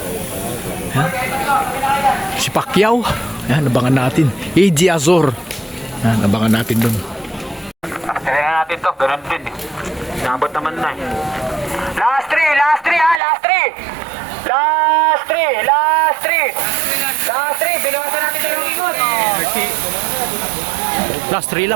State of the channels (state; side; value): drops out; left; at 13.2 s